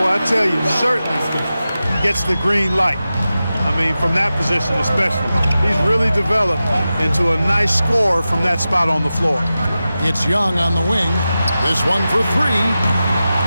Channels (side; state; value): both; inverted; correlation -0.93